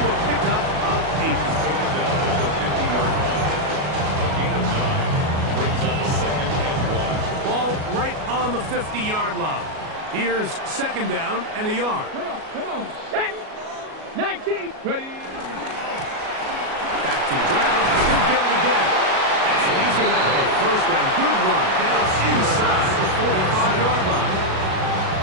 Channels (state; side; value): late; left; 37 ms